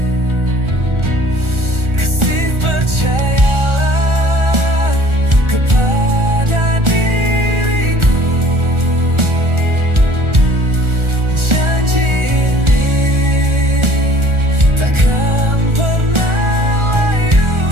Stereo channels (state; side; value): late; left; 1.4 ms